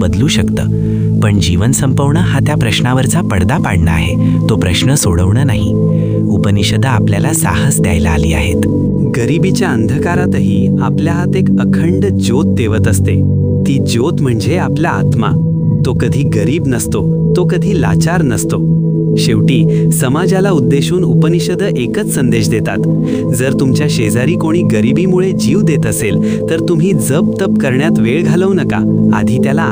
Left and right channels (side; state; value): both; identical; correlation 1.00